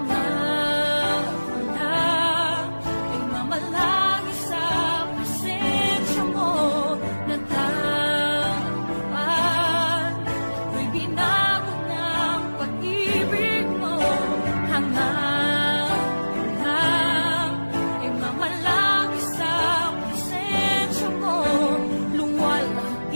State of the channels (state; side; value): inverted; both; correlation -1.00